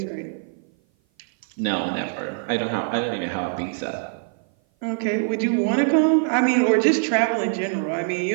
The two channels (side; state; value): left; silent; 56 dB below the other